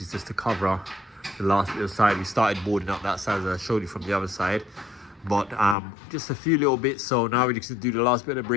is just to cover the last little side. We started boarding up that side, as I showed you from the other side, but just a few little bits. So now we just do the last bit of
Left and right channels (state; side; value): drops out; right; at 5.8 s